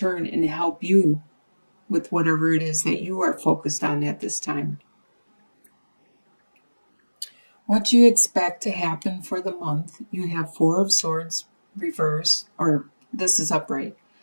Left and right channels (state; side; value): inverted; both; correlation -1.00